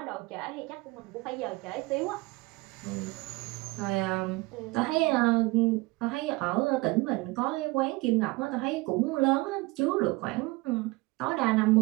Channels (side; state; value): left; quieter; 22.9 dB